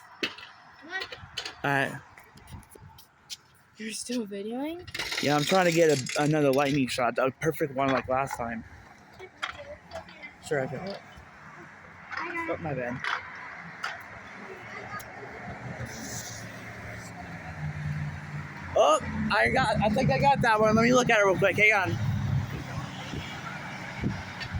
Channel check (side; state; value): both; identical; correlation 1.00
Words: Alright. You're still videoing? Yeah, I'm trying to get another lightning shot. A perfect one like last time. Sure, I can. Oh, my bad. Oh, I think I got that one. Let me look at it real quick. Hang on.